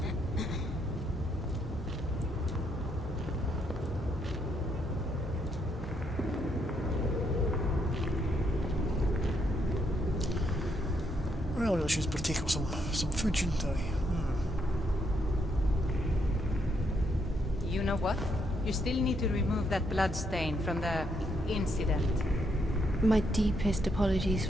Well, I should partake of some food, shouldn't I? You know what? You still need to remove that blood stain from the incident. My deepest apologies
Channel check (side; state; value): both; normal; correlation 0.76